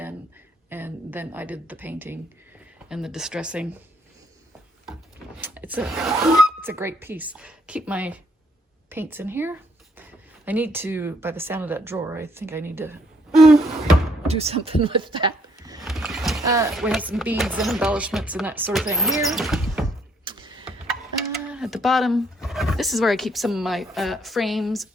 and then I did the painting and the distressing. It's a great piece. Keep my paints in here. I need to, by the sound of that drawer, I think I need to do something with that. We have some beads and embellishments and that sort of thing here. At the bottom, this is where I keep some of my frames,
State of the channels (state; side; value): normal; both; correlation 0.69